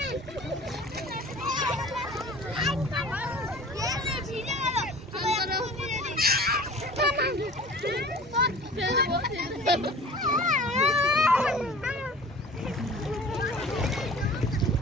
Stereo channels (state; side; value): normal; both; correlation 0.43